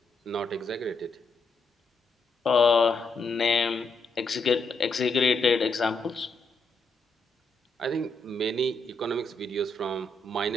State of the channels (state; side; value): quieter; right; 3.1 dB